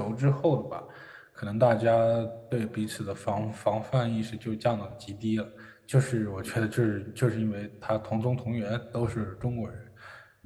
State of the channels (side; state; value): both; identical; correlation 1.00